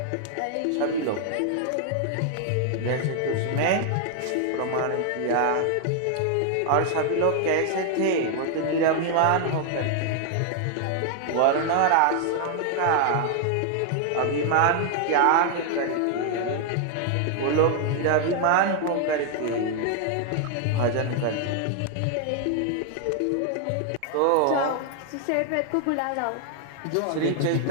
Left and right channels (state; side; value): different; both; correlation 0.00